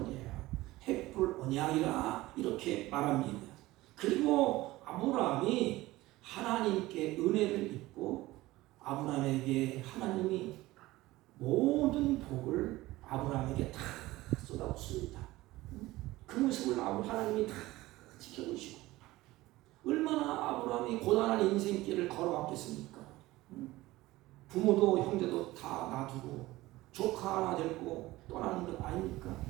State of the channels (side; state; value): left; quieter; 18.3 dB